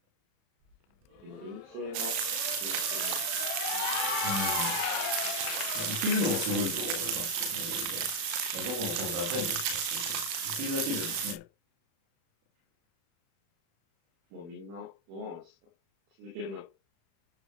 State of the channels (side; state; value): left; late; 36 ms